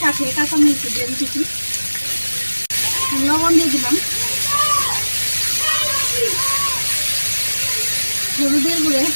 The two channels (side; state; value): both; inverted; correlation -1.00